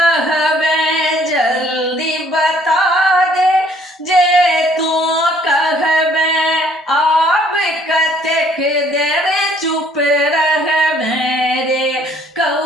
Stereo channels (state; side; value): normal; both; correlation 0.61